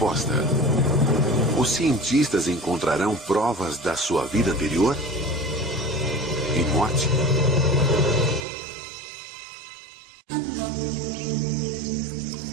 Os cientistas encontrarão provas da sua vida anterior? E morte?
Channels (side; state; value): left; drops out; at 8.5 s